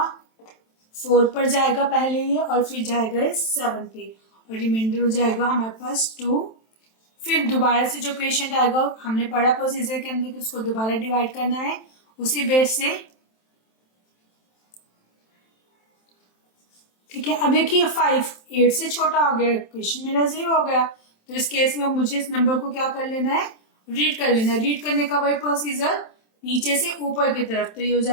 4 पर जाएगा पहले ये और फिर जाएगा 7 पे और रिमाइंडर हो जाएगा हमारे पास 2। फिर दोबारा से जो क्वेश्चन आएगा हमने पढ़ा प्रोसीजर के अंदर कि उसको दोबारा डिवाइड करना है उसी बेस से। ठीक है, अब देखिए 5 8 से छोटा हो गया, क्वेश्चन मेरा 0 हो गया। तो इस केस में मुझे इस नंबर को क्या कर लेना है, रीड कर लेना है। रीड करने का वही प्रोसीजर नीचे से ऊपर की तरफ। तो ये हो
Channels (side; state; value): right; late; 27 ms